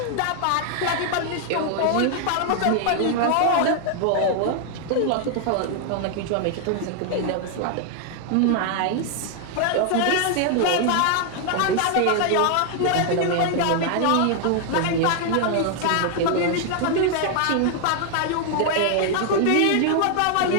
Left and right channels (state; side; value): different; both; correlation 0.00